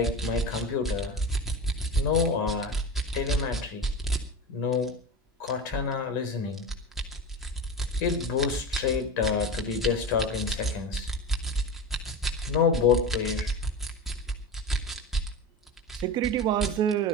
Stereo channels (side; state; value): both; normal; correlation 0.26